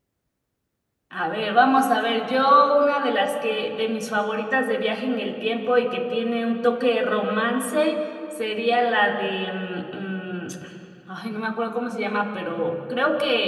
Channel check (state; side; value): identical; both; correlation 1.00